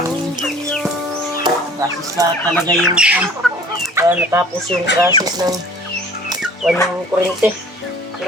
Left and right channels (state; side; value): normal; both; correlation 0.50